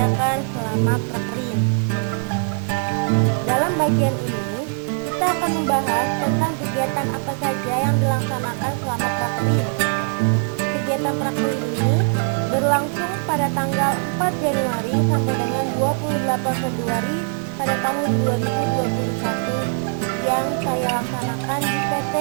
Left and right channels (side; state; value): left; silent; 65 dB below the other